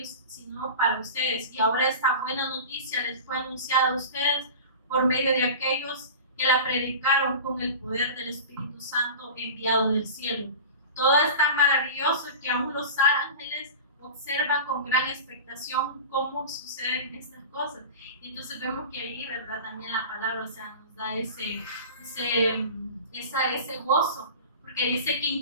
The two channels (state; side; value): inverted; both; correlation -0.33